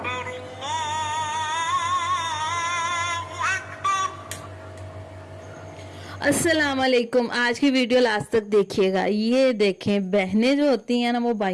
अल्लाहु अकबर। अस्सलाम वालेकुम। आज की वीडियो लास्ट तक देखिएगा। ये देखें, बहनें जो होती हैं ना, वो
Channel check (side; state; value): both; identical; correlation 1.00